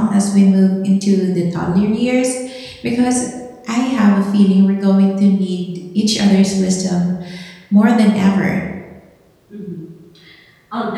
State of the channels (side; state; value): both; identical; correlation 1.00